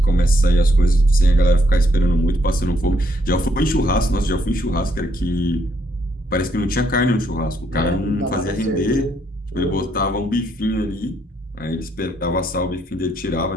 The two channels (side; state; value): both; normal; correlation 0.73